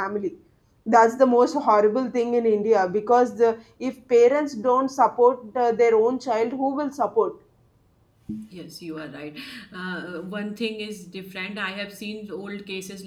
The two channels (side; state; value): both; identical; correlation 1.00